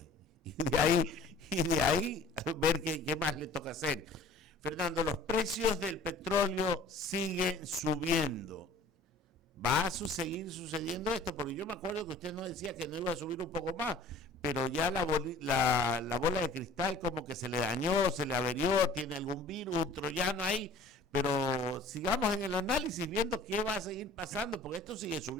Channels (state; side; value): quieter; right; 3.2 dB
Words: y de ahí ver qué más le toca hacer. Fernando, los precios del petróleo siguen subiendo. ¿Va a seguir sucediendo esto? Porque yo me acuerdo que usted nos decía que no iba a subir un poco más, pero ya la bola de cristal como que se le dañó, se le averió, tiene algún virus, un troyano ahí, pero sigamos en el análisis viendo qué va a seguir pasando, porque esto sigue